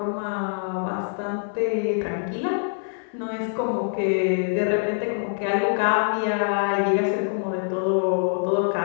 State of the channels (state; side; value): silent; right; 62 dB below the other